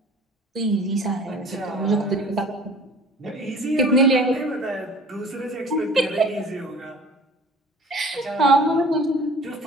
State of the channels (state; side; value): normal; both; correlation 0.46